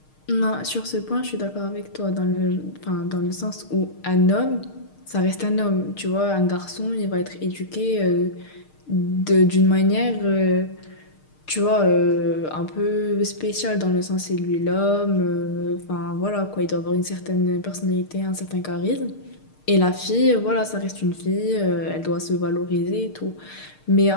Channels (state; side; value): late; right; 6.5 ms